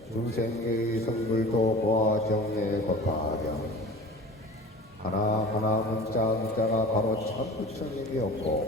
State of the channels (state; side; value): normal; both; correlation 0.39